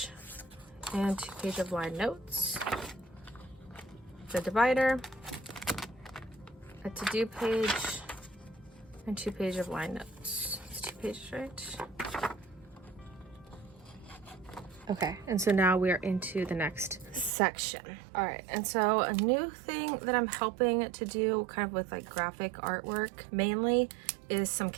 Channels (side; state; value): left; drops out; at 17.3 s